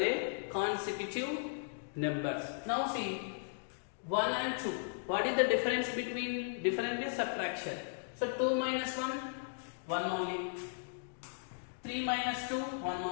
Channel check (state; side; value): silent; right; digital silence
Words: consecutive numbers. Now see, 1 and 2. What is the difference between? Difference is subtraction. So 2 minus 1, 1 only. 3 minus 2, 1